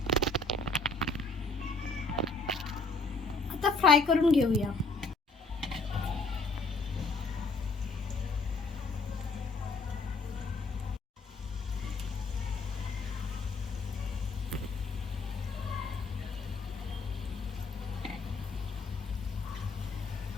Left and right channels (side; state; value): right; quieter; 3.5 dB